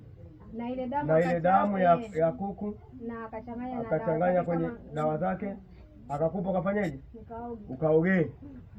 na ile damu ya kuku na akachanganya kwenye dawa zake akakupa, ukafanyaje? Nikaoge. Ukaogee.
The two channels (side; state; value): both; identical; correlation 1.00